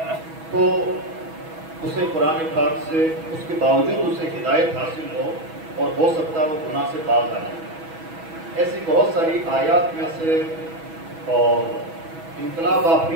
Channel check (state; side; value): late; left; 6.2 ms